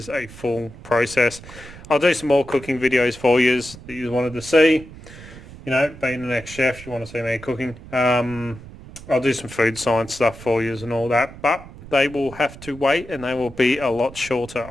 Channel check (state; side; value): noise; right; rumble, 17 dB below the sound